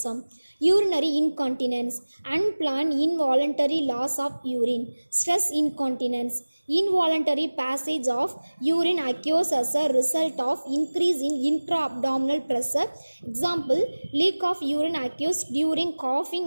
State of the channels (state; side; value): inverted; both; correlation -1.00